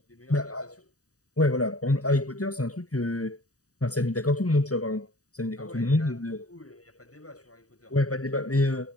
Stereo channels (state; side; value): late; right; 0.66 ms